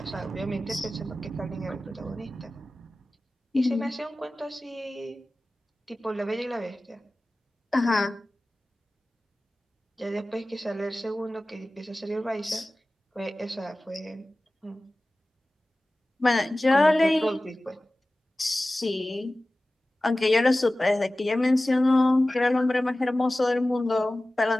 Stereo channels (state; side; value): normal; both; correlation 0.96